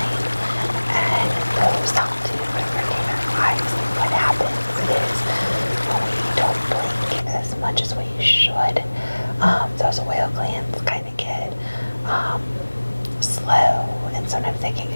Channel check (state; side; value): inverted; both; correlation -1.00